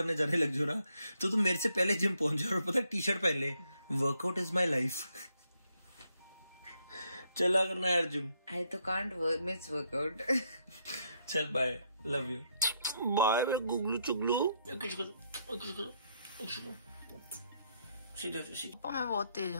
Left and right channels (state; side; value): inverted; both; correlation -0.75